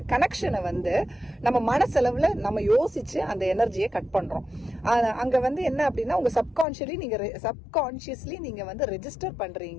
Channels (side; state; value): right; drops out; at 6.7 s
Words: கனெக்ஷனை வந்து நம்ம மனசளவில் நம்ம யோசிச்சு அந்த எனர்ஜியை கட் பண்றோம். அங்க வந்து என்ன அப்படின்னா, உங்க சப்கான்ஷியஸ்லி நீங்க வந்து ரெஜிஸ்டர்